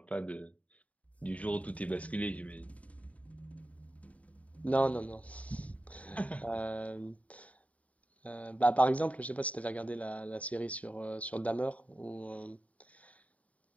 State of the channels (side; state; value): right; late; 0.068 ms